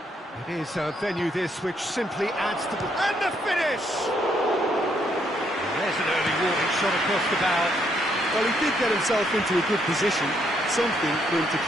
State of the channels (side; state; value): both; normal; correlation 0.73